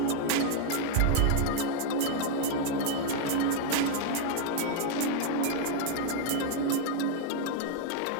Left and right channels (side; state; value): both; different; correlation 0.00